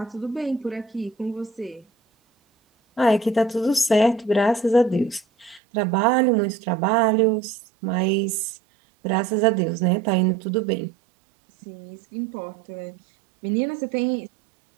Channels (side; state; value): left; drops out; at 5.6 s